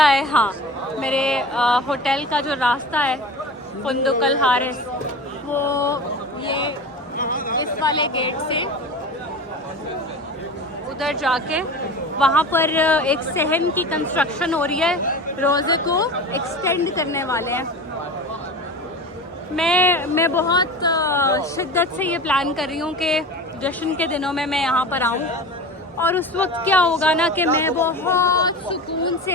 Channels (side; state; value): both; normal; correlation 0.33